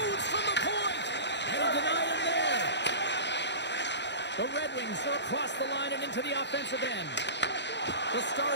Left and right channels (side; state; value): right; late; 0.51 ms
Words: from the point. And he denied him there. The Red Wings are across the line and into the offensive end. The